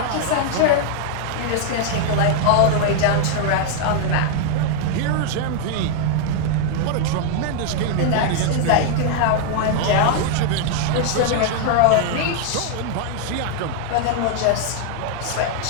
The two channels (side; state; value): both; different; correlation 0.00